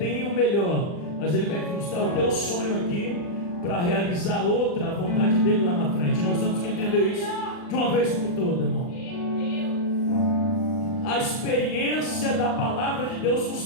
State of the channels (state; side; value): late; right; 40 ms